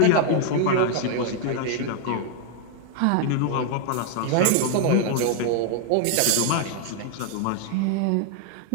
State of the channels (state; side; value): different; both; correlation 0.00